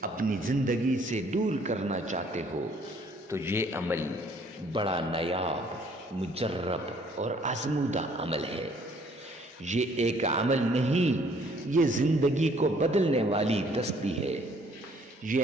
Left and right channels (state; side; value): normal; both; correlation 0.61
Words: اپنی زندگی سے دور کرنا چاہتے ہو، تو یہ عمل بڑا نایاب، مجرب اور آزمودہ عمل ہے۔ یہ ایک عمل نہیں، یہ زندگی کو بدلنے والی تسبیح ہے۔